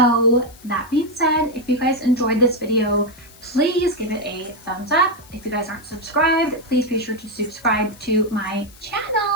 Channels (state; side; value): noise; left; hiss, 24 dB below the sound